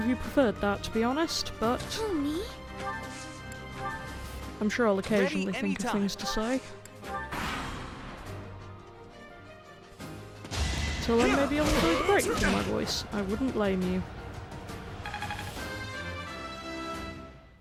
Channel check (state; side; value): identical; both; correlation 1.00